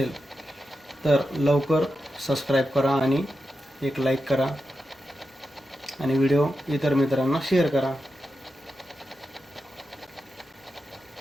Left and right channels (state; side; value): normal; both; correlation 0.89